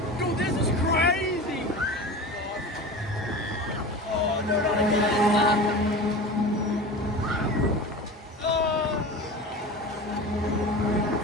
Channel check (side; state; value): both; normal; correlation 0.32